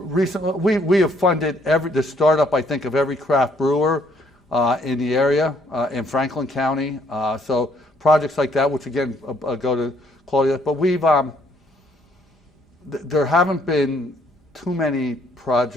we have funded the startup, I think, of every craft brewer in the area in Franklin County. So projects like that, which again go to quality. But there haven't been too many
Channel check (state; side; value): normal; both; correlation 0.66